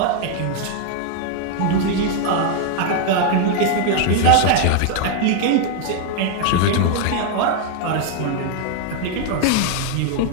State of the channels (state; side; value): different; both; correlation 0.00